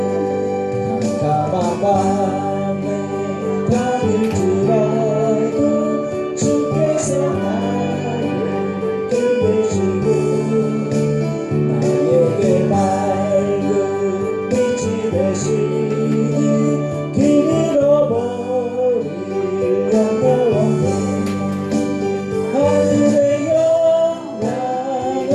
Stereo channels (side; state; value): both; identical; correlation 1.00